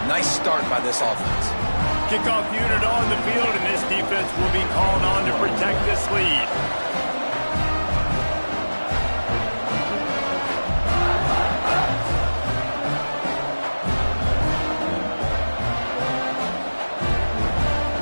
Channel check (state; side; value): inverted; both; correlation -1.00